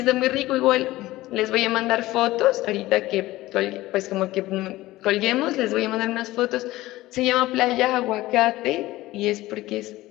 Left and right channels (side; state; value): right; quieter; 17.5 dB